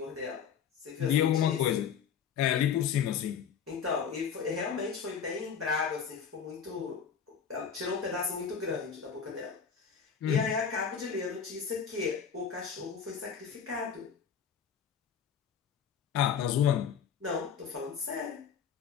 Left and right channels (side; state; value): right; quieter; 7.4 dB